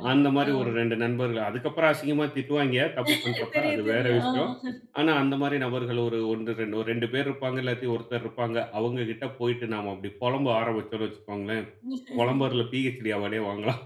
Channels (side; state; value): both; identical; correlation 1.00